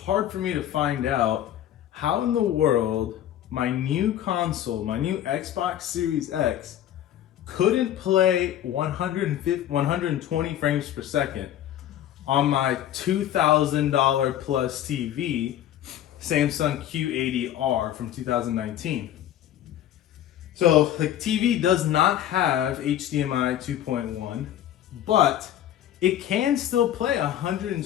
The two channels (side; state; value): right; quieter; 11.6 dB